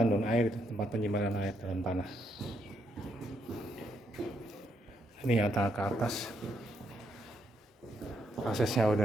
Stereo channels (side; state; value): both; normal; correlation 0.76